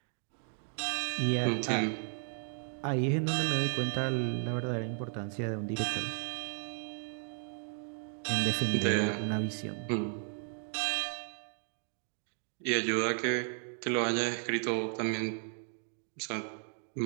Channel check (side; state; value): left; silent; 55 dB below the other